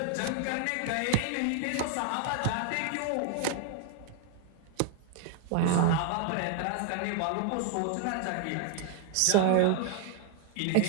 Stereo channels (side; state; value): both; different; correlation 0.00